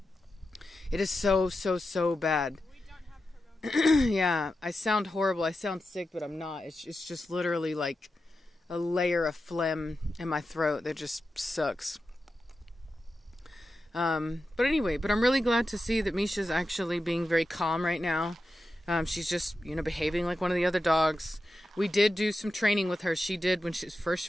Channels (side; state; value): both; normal; correlation 0.90